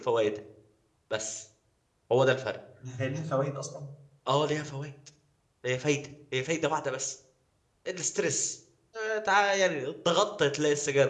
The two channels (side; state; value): both; identical; correlation 1.00